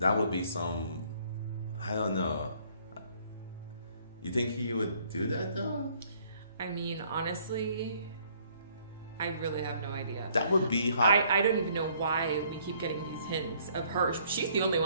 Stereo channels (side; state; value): both; inverted; correlation -0.62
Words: would be some, I don't know. You think he would do that though? I mean, honestly, I really have no idea. That would be hard. I don't even know why we keep getting these hints of her. She's the only